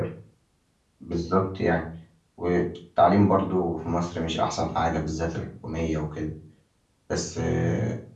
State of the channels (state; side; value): identical; both; correlation 1.00